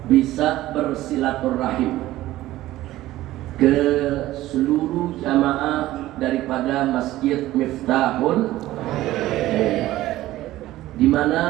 bisa bersilaturahim ke seluruh jamaah daripada Masjid Miftahul, di mana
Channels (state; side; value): quieter; left; 15.7 dB